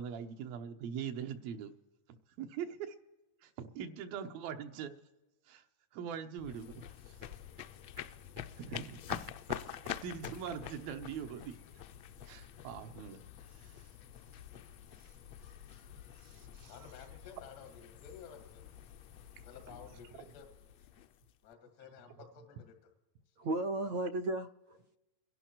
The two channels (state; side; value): late; left; 8.5 ms